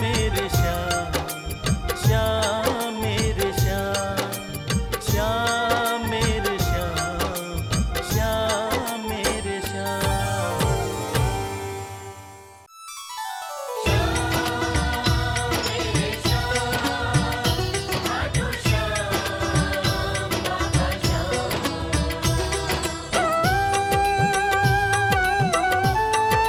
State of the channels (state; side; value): identical; both; correlation 1.00